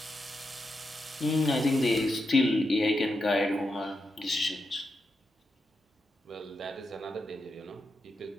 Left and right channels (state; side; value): normal; both; correlation 0.86